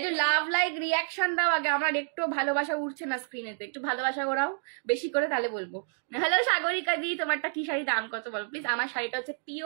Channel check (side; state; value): left; silent; digital silence